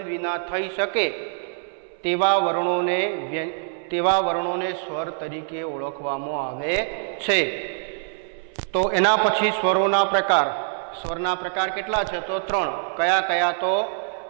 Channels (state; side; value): silent; left; 62 dB below the other